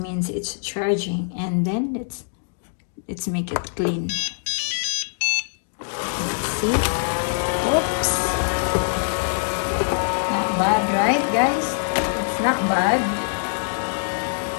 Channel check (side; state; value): right; silent; digital silence